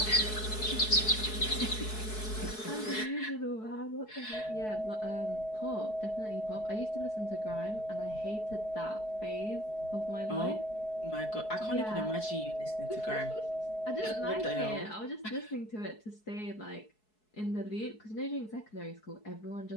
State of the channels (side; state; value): right; late; 4.7 ms